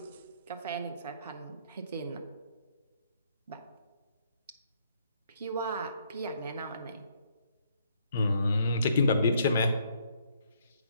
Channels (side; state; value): both; inverted; correlation -0.68